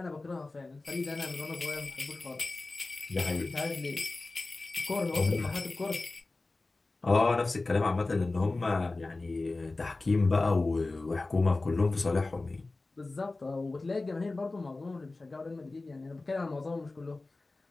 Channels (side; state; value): right; quieter; 3.3 dB